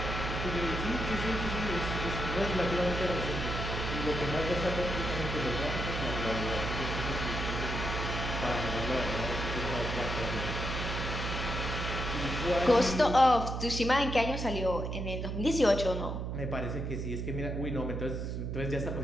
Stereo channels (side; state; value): right; noise; hum, 3 dB below the sound